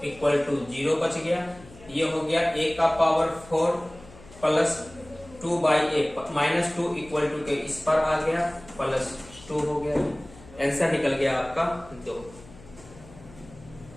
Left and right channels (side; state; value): left; noise; hum, 20 dB below the sound